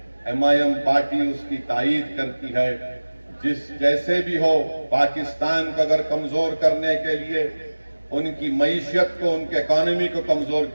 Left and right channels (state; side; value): inverted; both; correlation -1.00